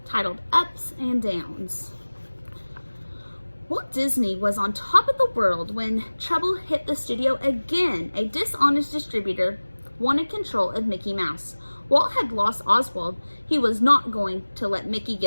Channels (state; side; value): inverted; both; correlation -1.00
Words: titled Ups and Downs. Walt Disney was on top of the world when trouble hit the studio again. A dishonest distributor wanted control of Mickey Mouse. Walt had lost Oswald. He was not going to let Mickey